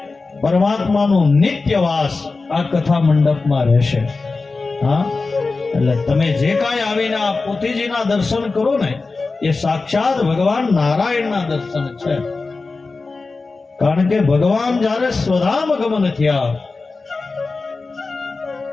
પરમાત્માનું નિત્યવાસ આ કથા મંડપમાં રહેશે. એટલે તમે જે કાંઈ આવીને આ પોથીજીના દર્શન કરો ને એ સાક્ષાત ભગવાન નારાયણના દર્શન છે. કારણ કે ભગવાન જ્યારે સ્વધામ ગમન થયા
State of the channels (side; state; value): right; quieter; 3.9 dB